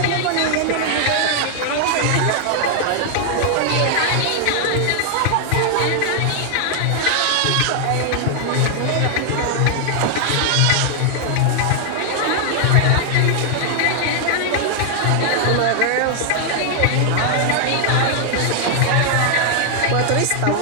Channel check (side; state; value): both; different; correlation 0.00